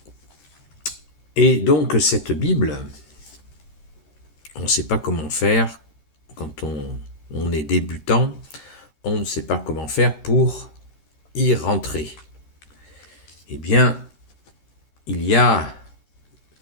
Et donc cette Bible, on ne sait pas comment faire quand on est débutant, on ne sait pas comment faire pour y rentrer. Eh bien, il y a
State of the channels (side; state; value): right; late; 14 ms